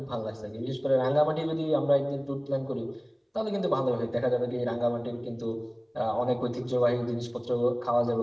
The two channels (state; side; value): identical; both; correlation 1.00